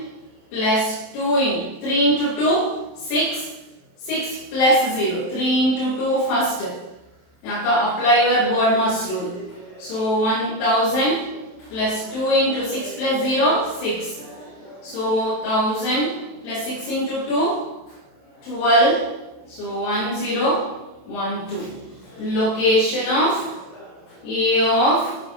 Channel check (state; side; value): late; right; 27 ms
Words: plus 2 in 3 into 2 6. 6 plus 0. 3 into 2 first. Now apply your BODMAS rule. So 1000 plus 2 into 6 plus 0 6. So 1000 plus 6 into 2 12. So 1012. Location of A of